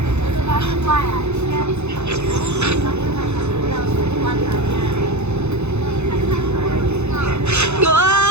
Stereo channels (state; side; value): late; left; 0.81 ms